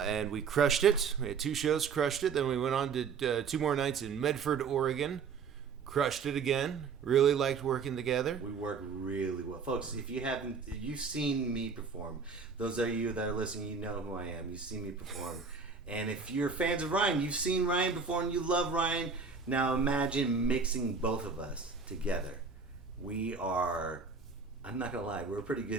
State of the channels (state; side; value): quieter; left; 5.2 dB